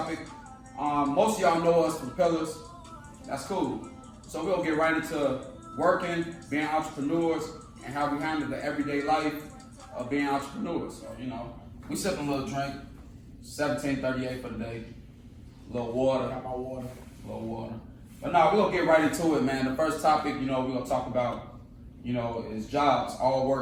Most of y'all know us from Pillars. That's cool. So we're gonna get right into working, being entrepreneurs, and how we handle the everyday life of being entrepreneurs. So, we sipping a little drink, 1738 for the day, a little water. Got my water. A little water. But no, we're gonna get right into it, man. The first topic, we're gonna talk about, is jobs, all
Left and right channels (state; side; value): identical; both; correlation 1.00